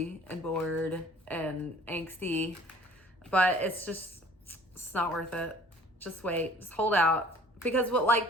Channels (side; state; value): both; normal; correlation 0.52